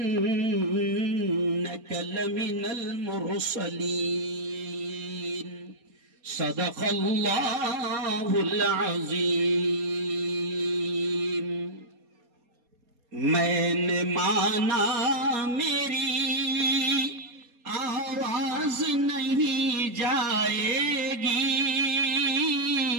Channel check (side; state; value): left; late; 4.2 ms